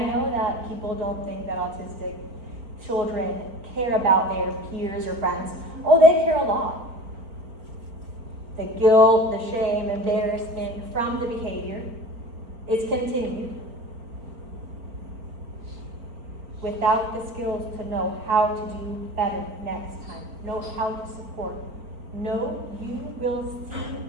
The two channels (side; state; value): left; late; 4.4 ms